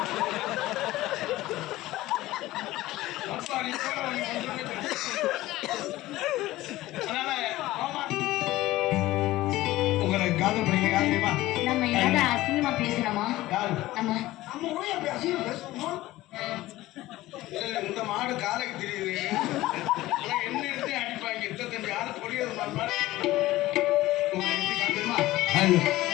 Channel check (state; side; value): quieter; right; 17.0 dB